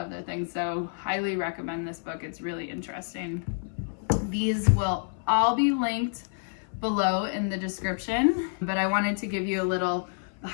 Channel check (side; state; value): right; silent; 57 dB below the other